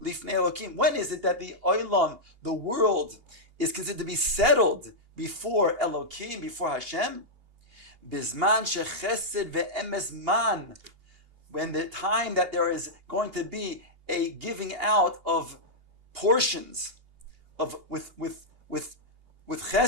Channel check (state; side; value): late; left; 2.8 ms